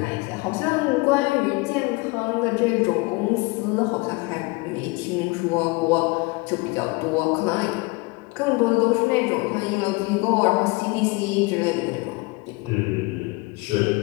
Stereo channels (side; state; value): right; quieter; 25.3 dB